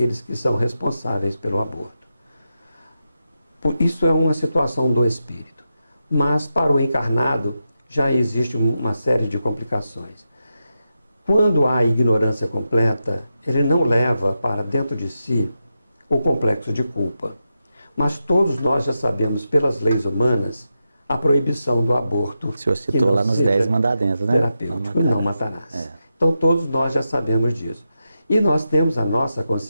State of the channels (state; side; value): inverted; both; correlation -0.88